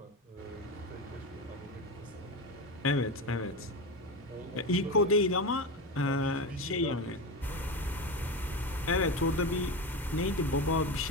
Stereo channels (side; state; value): both; normal; correlation 0.20